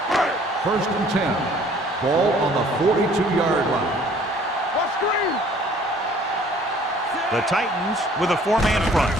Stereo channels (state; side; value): normal; both; correlation 0.55